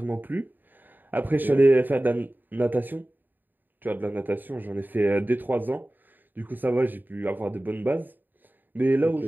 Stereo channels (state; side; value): late; left; 0.090 ms